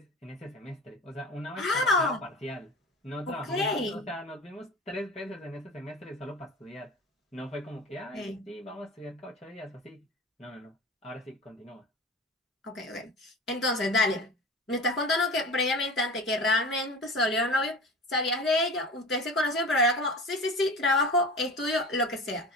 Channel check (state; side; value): normal; both; correlation 0.35